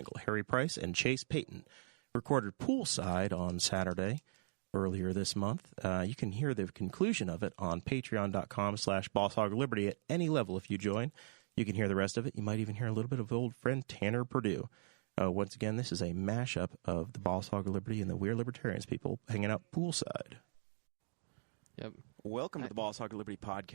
Harry Price, and Chase Payton. Recorded Poolside on Saturday earlier this month. You can hear the conclusion of it on patreon.com/BossHogLiberty at any level if you join. You can hear the rest of it. You might even hear a little bit of old friend Tanner Purdue. Once again, this is a mashup of the Boss Hog of Liberty and the We're Libertarians people hanging out poolside. Yep. Welcome to the Boss Hog of Liberty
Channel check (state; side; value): silent; left; digital silence